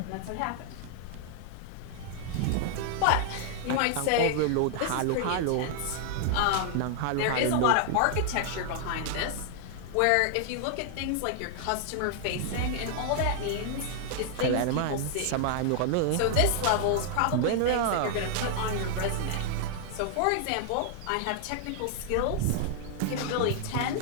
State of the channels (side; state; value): both; different; correlation 0.00